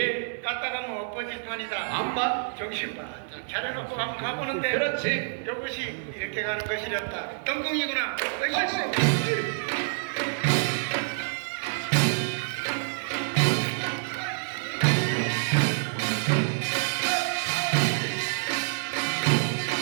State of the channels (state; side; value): silent; left; digital silence